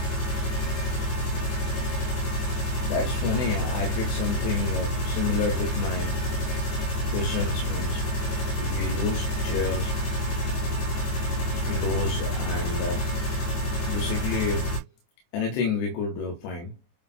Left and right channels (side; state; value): right; late; 24 ms